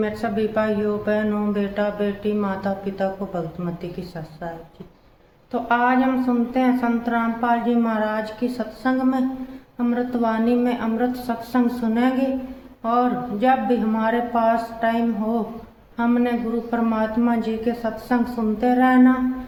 सभी भाइयों बहनों बेटा बेटी माता पिता को भक्तमती की सत साहब जी। तो आज हम सुनते हैं संत रामपाल जी महाराज की सत्संग में अमृतवाणी में अमृत सत्संग सुनेंगे। और जब भी हमारे पास टाइम हो हमने गुरु परमात्मा जी के सत्संग सुनते रहना।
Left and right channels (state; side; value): identical; both; correlation 1.00